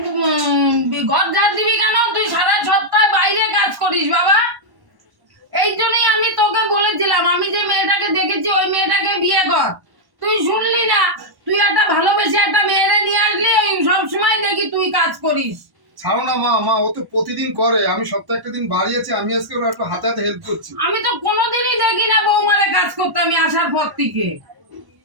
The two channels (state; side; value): late; left; 1.1 ms